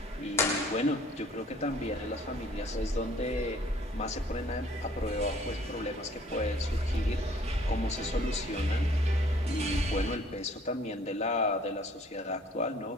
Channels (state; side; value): normal; both; correlation 0.56